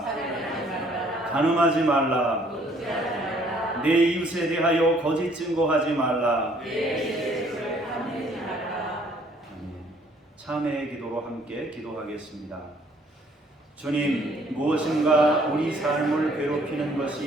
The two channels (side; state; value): both; normal; correlation 0.61